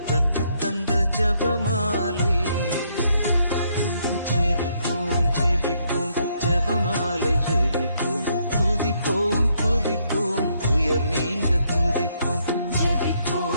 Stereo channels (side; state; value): both; inverted; correlation -0.73